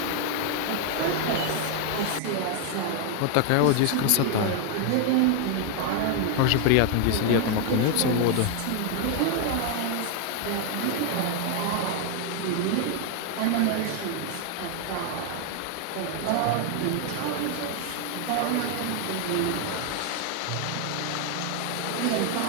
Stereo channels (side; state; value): both; different; correlation 0.00